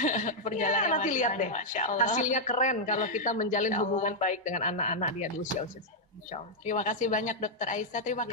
Perjalanan nanti lihat deh, hasilnya keren kalau kita menjalin hubungan baik dengan anak-anak dia di usia-usia. Insya Allah. Terima kasih banyak Dokter Aisyah, terima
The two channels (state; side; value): normal; both; correlation -0.04